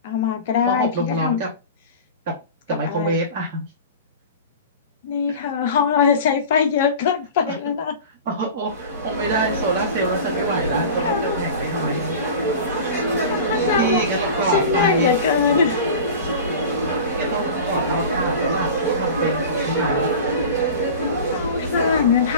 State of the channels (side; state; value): both; inverted; correlation -0.34